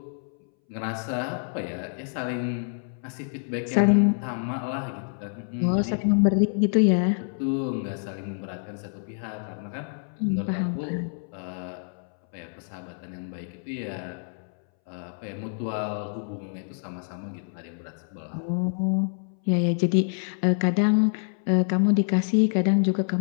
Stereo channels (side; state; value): right; silent; 60 dB below the other